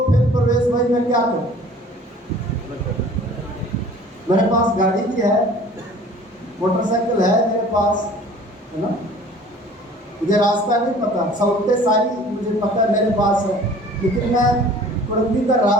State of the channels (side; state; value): both; normal; correlation 0.48